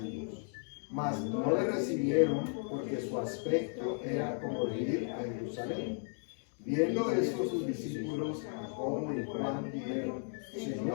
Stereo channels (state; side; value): silent; right; 54 dB below the other